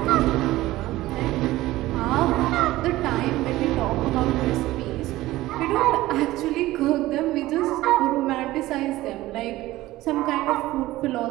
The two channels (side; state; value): left; quieter; 17.0 dB